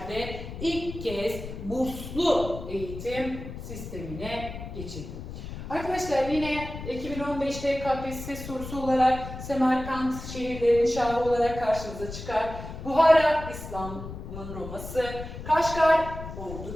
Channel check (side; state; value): left; noise; rumble, 10 dB below the sound